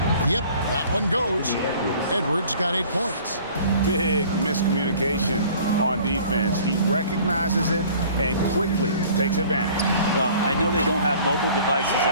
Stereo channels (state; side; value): inverted; both; correlation -0.50